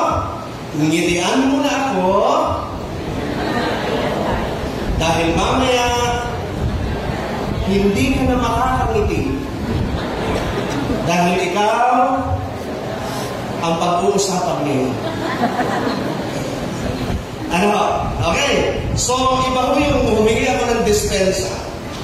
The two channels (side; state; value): both; identical; correlation 1.00